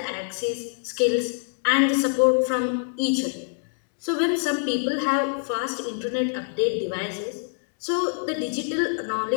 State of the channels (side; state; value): right; silent; digital silence